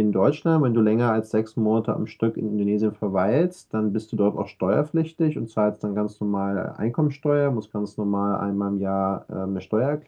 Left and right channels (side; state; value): both; identical; correlation 1.00